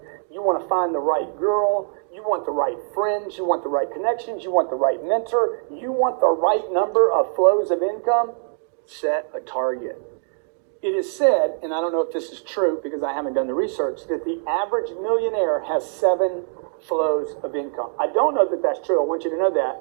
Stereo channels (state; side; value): silent; left; digital silence